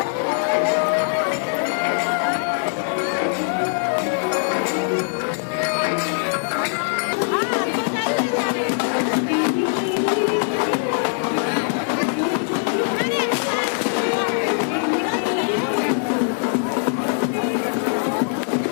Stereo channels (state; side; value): silent; right; digital silence